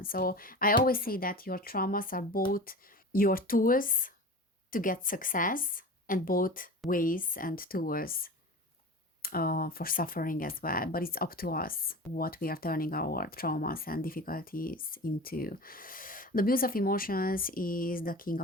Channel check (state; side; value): normal; both; correlation 0.33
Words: So I always say that your traumas are both your tools to get success, and both ways and tools for suffering as well. But it's up to us what we are turning our traumas and difficulties into. The Muse of emotions is the King